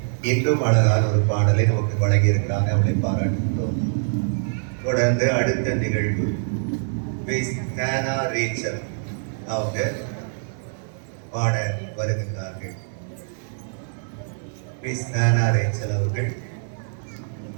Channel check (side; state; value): left; silent; digital silence